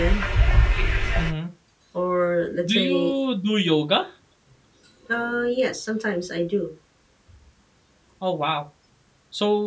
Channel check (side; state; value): both; identical; correlation 1.00